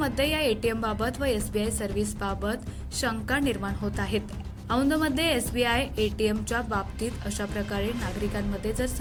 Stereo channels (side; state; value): both; identical; correlation 1.00